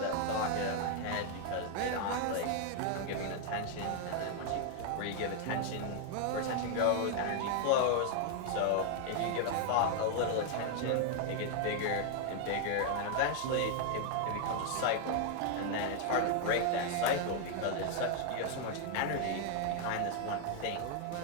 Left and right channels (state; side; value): different; both; correlation 0.00